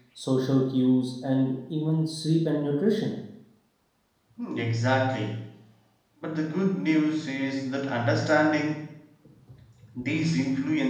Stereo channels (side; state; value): both; identical; correlation 1.00